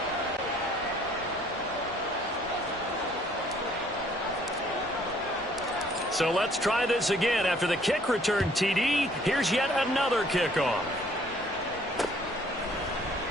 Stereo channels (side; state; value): both; normal; correlation 0.60